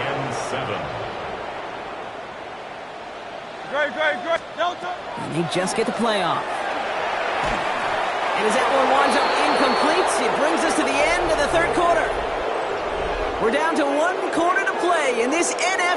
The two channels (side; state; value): both; identical; correlation 1.00